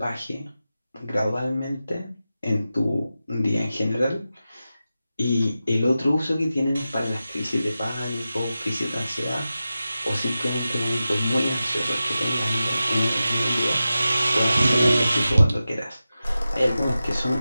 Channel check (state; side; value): inverted; both; correlation -0.93